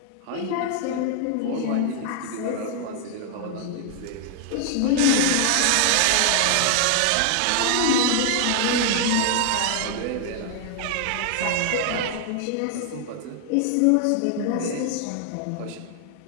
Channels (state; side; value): different; both; correlation 0.00